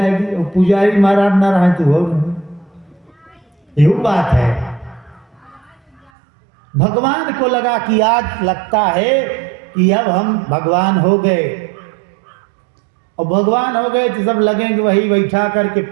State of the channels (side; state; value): left; drops out; at 6.1 s